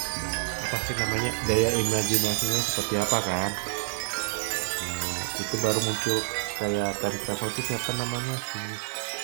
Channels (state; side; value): silent; left; 59 dB below the other